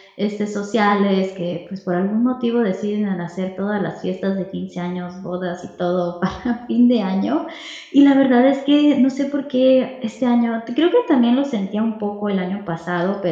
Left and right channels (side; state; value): both; identical; correlation 1.00